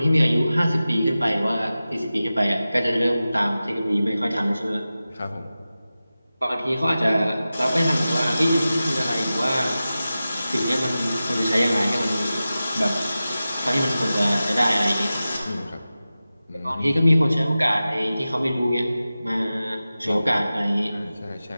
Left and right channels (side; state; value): both; inverted; correlation -0.95